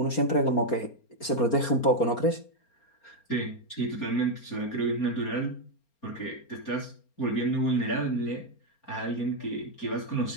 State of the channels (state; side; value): late; right; 4.3 ms